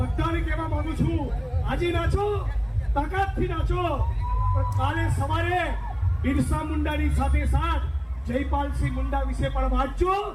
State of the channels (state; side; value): identical; both; correlation 1.00